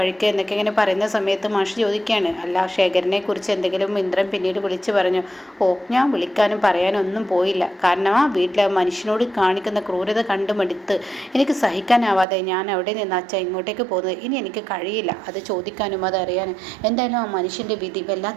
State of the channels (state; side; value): drops out; left; at 12.2 s